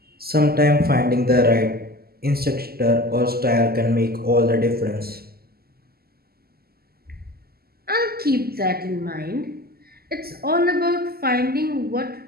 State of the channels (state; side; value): late; left; 0.45 ms